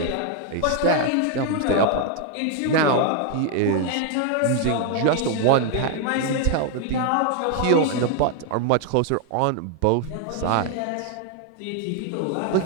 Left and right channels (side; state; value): both; different; correlation 0.01